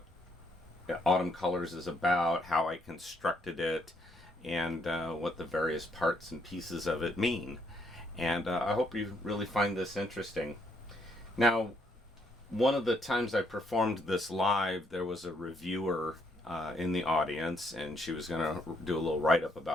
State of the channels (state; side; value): normal; both; correlation 0.72